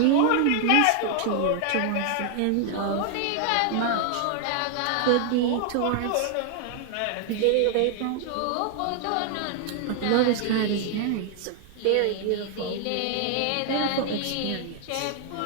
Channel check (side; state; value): both; different; correlation 0.00